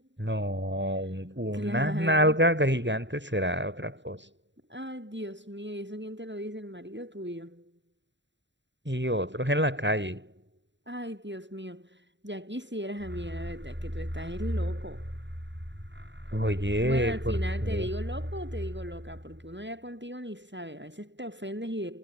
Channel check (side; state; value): left; late; 0.52 ms